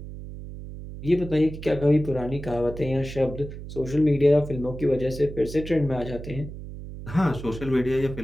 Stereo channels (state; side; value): noise; right; hum, 11 dB below the sound